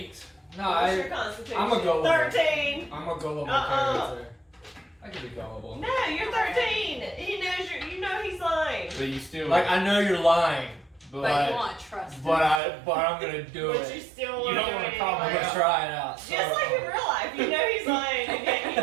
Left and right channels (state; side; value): drops out; left; at 12.6 s